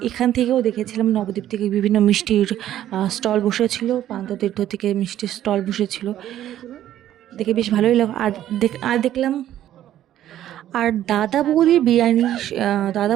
এখান থেকেও দেখেছিলাম নবদ্বীপ থেকে বিভিন্ন মিষ্টির স্টল বসেছিল, প্রান্ততীর্থ থেকে মিষ্টির স্টল বসেছিল। দেখে বেশ ভালোই লাগলো। আর দেখলাম দাদা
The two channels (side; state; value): left; quieter; 12.1 dB